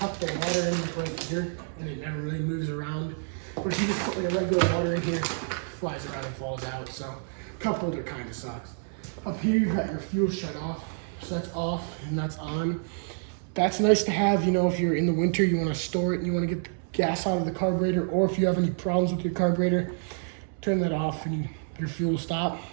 the water in right here and it never really moves around. But if you just put like a regular water in here, it flies around and falls out. So cup holder kind of sucks. Up here you've got your fuel shut off. So that's off and that's on. That's nice to have, you know, if you're in the winter, you want to store it and you want to get the gas out of the carburetor, or if you have any problems with your carburetor, turn that off and your fuel will stop.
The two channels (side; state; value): left; silent; 59 dB below the other